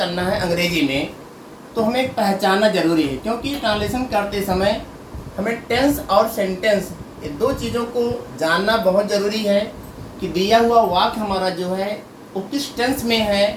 है अंग्रेजी में, तो हमें पहचानना जरूरी है। क्योंकि ट्रांसलेशन करते समय हमें टेंस और सेंटेंस ये दो चीज़ों को जानना बहुत ज़रूरी है कि दिया हुआ वाक्य हमारा जो है वो किस टेंस में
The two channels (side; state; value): both; identical; correlation 1.00